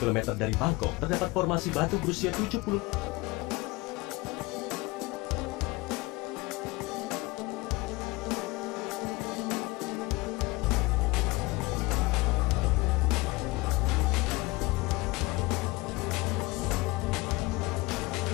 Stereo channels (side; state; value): right; quieter; 22.6 dB